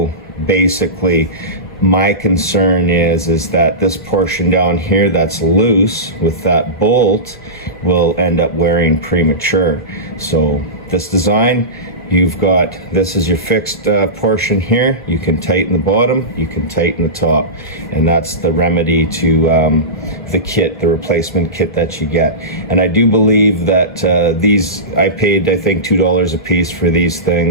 basically, my concern is that this portion down here that's loose with that bolt will end up wearing premature. So this design, this is your fixed portion here. You can tighten the bottom, you can tighten the top, and that's the remedy to the kit, the replacement kit that you get. And I do believe that I paid, I think, $2 a piece for these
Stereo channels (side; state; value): both; normal; correlation -0.19